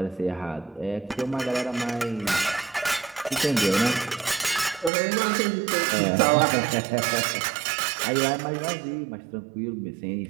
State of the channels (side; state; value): left; drops out; at 4.9 s